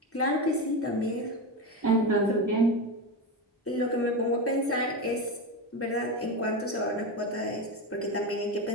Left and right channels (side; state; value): both; normal; correlation 0.17